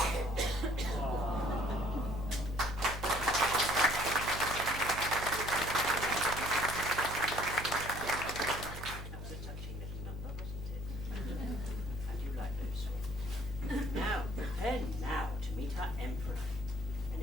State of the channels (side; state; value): right; noise; hum, 8 dB below the sound